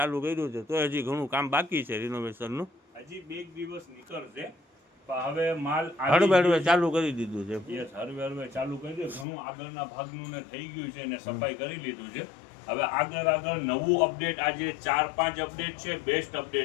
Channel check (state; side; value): drops out; right; at 9.2 s